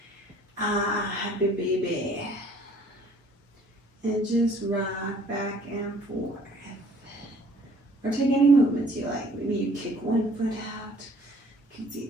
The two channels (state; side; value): normal; both; correlation 0.57